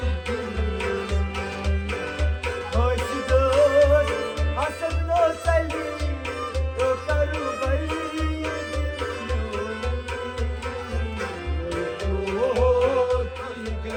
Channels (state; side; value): identical; both; correlation 1.00